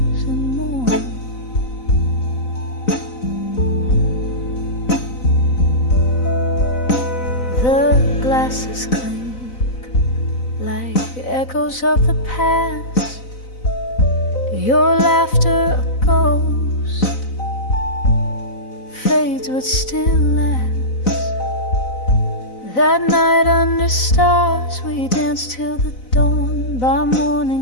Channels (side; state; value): right; late; 4.0 ms